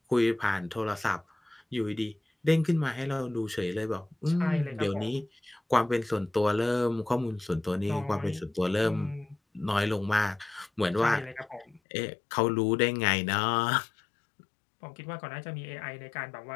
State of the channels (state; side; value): drops out; right; at 11.8 s